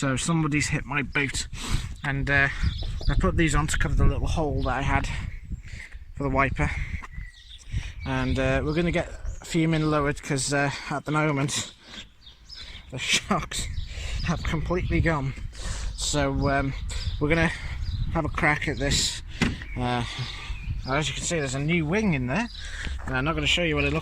somebody's hit my boot, and I put these on to cover the little hole that I had for the wiper. And we're going to get FUMIN lowered because at the moment the shocks have completely gone. So we're going to have a crack at this. As you can see, there's a new wing in there, and I'm not going to show you what it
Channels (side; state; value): both; identical; correlation 1.00